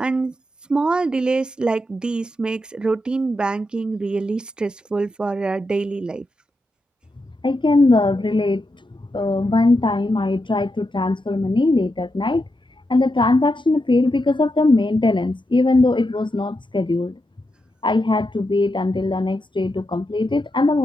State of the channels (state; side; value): normal; both; correlation 0.85